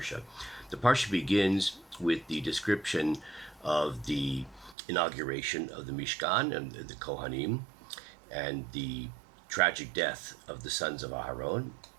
The parsha begins with the description of the inauguration of the Mishkan and the Kohanim, and the tragic death of the sons of Aharon.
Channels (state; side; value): drops out; left; at 4.8 s